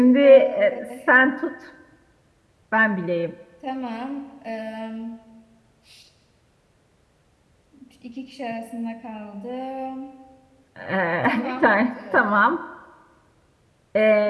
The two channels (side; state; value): both; identical; correlation 1.00